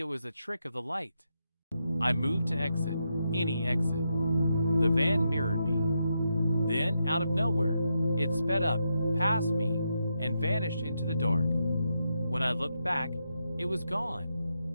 was a trick of the light. I moved to exit, any exit. The van mirrored me. Then, out of nowhere, it sped up, past me, and vanished into the dark. When I looked back, it was gone.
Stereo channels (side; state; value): both; inverted; correlation -0.83